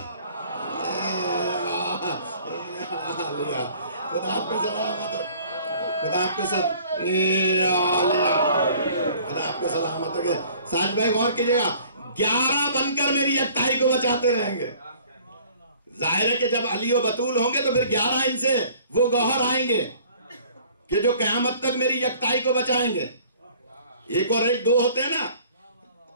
خدا آپ کو سلامت رکھے, خدا آپ کو سلامت رکھے. ساج بھائی غور کیجئے گا, 11 بن کر میری یکتائی کو بچاتے رہیں گے. ظاہر ہے کہ جب علی و بطول ہوں گے تو پھر 11 ان سے وہ گوہر آئیں گے کہ جو قیامت تک میری یکتائی کو بچائیں گے. 1 اور 1 2 ہوتے ہیں نا,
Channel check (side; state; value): both; inverted; correlation -0.53